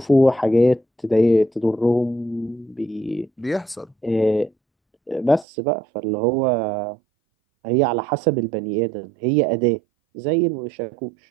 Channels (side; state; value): left; drops out; at 5.5 s